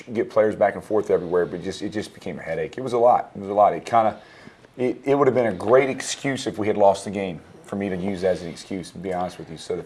get players back and forth everywhere, but it just became a headache. It was a lot. It would have been a great excuse if we had lost the game for me to use as an excuse, to be honest with you. So the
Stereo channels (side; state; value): both; identical; correlation 1.00